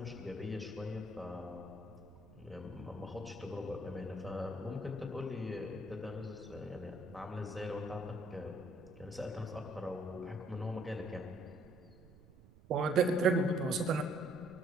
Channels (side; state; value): right; noise; rumble, 21 dB below the sound